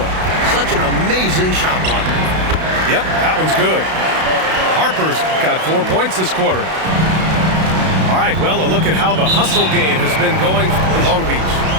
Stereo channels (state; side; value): late; left; 32 ms